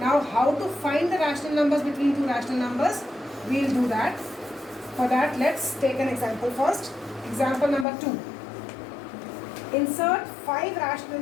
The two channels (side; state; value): right; drops out; at 7.9 s